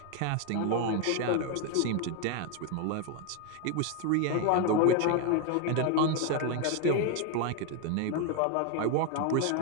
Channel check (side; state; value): both; different; correlation 0.01